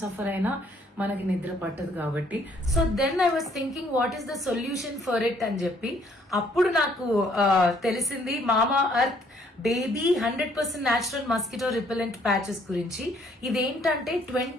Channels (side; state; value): both; normal; correlation 0.64